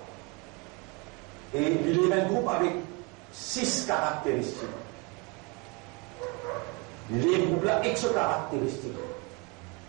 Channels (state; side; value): quieter; left; 28.7 dB